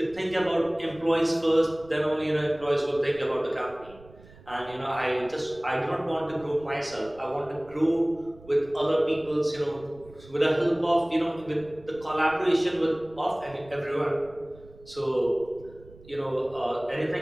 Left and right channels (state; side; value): noise; right; rumble, 22 dB below the sound